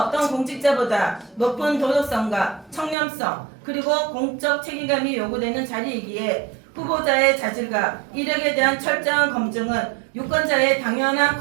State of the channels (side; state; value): left; drops out; at 3.0 s